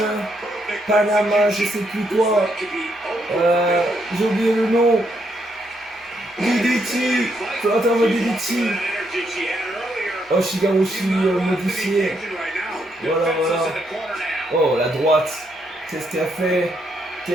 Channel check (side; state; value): both; normal; correlation 0.76